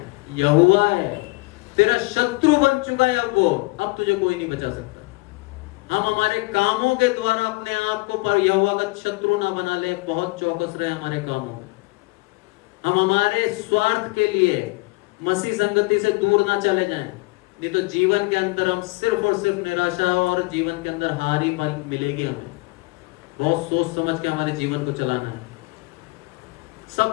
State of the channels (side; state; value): right; quieter; 25.2 dB